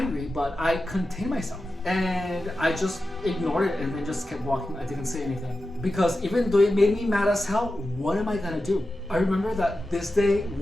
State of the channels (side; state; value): both; normal; correlation 0.92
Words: but I contained myself. And I just ignored it and then just kept walking. I didn't say anything. Because even though it made me mad as hell, what am I gonna do? I remember that this day